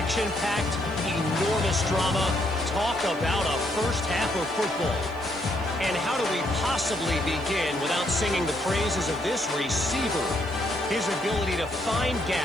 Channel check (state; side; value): noise; right; hiss, 27 dB below the sound